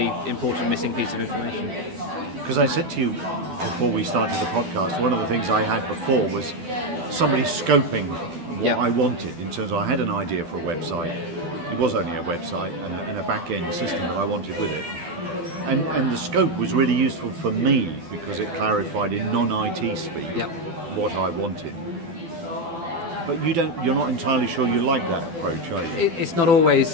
important missing piece of information. Because I said to you before we started the podcast, one of the things I had before was somebody scoping what I wanted in terms of I had an idea for a website. It was only a website and a back-end system that I wanted with it. And the scope was really useful for me because it clarified in non-IT speak what I wanted. But you're not entirely sure you like that approach, are you? It's not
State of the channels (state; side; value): late; left; 12 ms